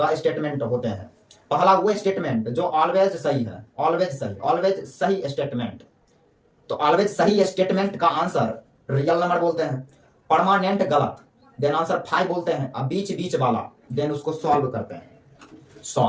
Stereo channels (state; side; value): identical; both; correlation 1.00